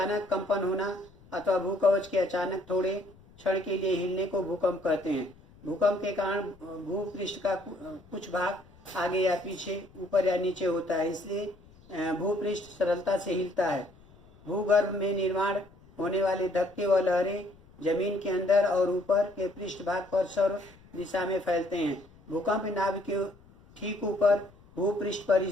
कंपन होना अथवा भूकवच के अचानक थोड़े क्षण के लिए हिलने को भूकंप कहते हैं। भूकंप के कारण भूपृष्ठ का कुछ भाग आगे या पीछे, ऊपर या नीचे होता है, इसलिए भूपृष्ठ सरलता से हिलता है। भूगर्भ में निर्माण होने वाले धक्के व लहरें जमीन के अंदर और ऊपर के पृष्ठ भाग पर सर्व दिशा में फैलते हैं। भूकंप नाभ के ठीक ऊपर भूपृष्ठ पर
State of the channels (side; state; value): left; noise; rumble, 25 dB below the sound